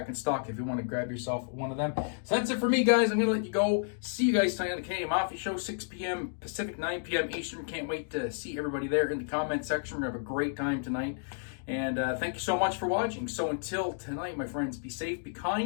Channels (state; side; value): silent; right; digital silence